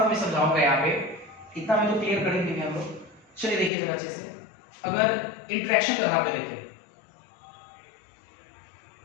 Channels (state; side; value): drops out; right; at 3.7 s